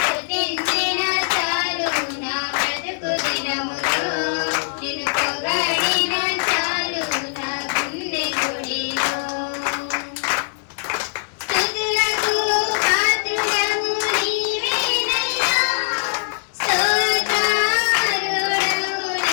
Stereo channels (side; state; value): right; silent; 65 dB below the other